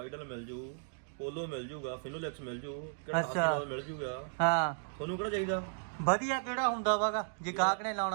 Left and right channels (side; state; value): left; silent; digital silence